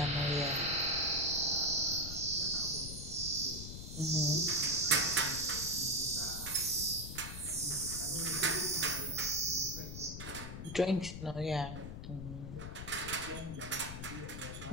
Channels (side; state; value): left; noise; rumble, 8 dB below the sound